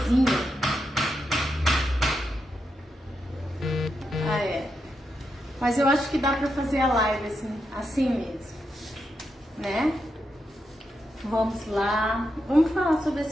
Mas eu acho que dá para fazer a live assim mesmo, né? Vamos lá, vamos falar sobre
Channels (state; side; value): normal; both; correlation 0.84